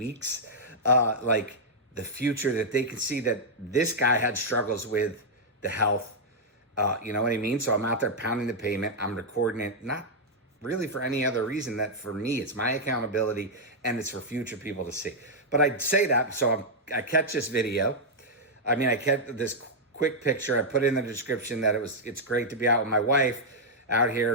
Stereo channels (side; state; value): both; normal; correlation -0.05